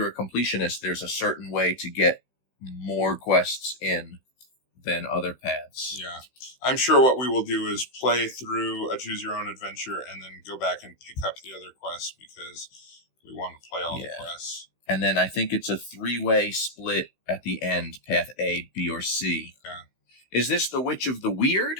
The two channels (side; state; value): right; late; 16 ms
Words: a completionist, there's a certain way to get more quests in than other paths. Yeah. I'm sure what we will do is play through a choose your own adventure and then go back and pick up the other quests because we want to play all the quests. And then I think it's a 3-way split at the end, path A, B, or C. Yeah. Is this the Witch of the Weird